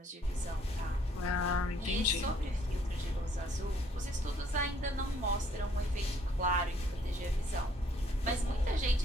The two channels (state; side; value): normal; both; correlation 0.64